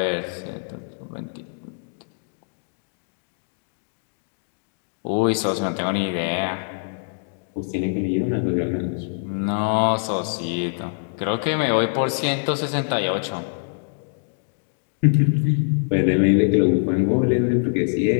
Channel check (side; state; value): right; silent; digital silence